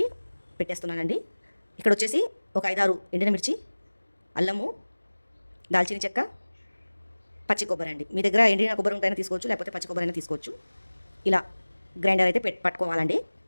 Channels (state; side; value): inverted; both; correlation -1.00